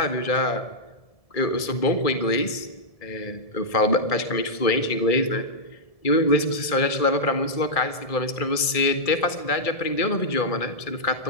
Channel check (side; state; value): right; late; 1.7 ms